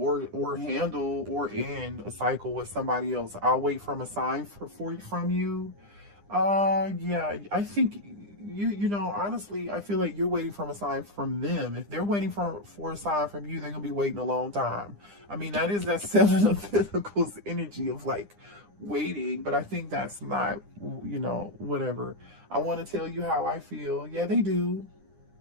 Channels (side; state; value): left; late; 9.9 ms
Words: handle or end a cycle with somebody else. I'll wait from a sign from you. Yeah, I think you know, honestly, I feel like you're waiting from a sign from them. If they're waiting for a sign from you, they're gonna be waiting a long time. I mean, that is that Seven of Pentacles energy of like waiting, but I think that's not, you know, whatever. I want to tell you how I feel. Yeah, they do